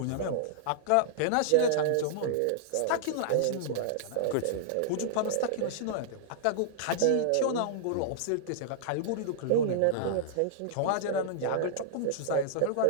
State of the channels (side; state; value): both; different; correlation -0.01